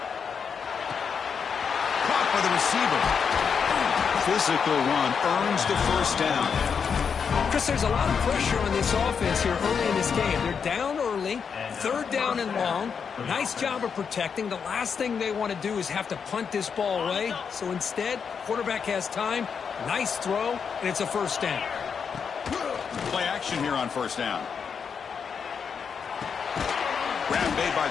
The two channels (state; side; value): quieter; right; 6.4 dB